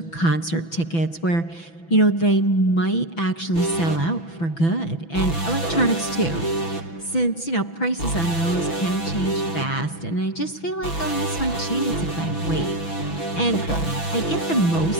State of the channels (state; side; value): late; right; 6.0 ms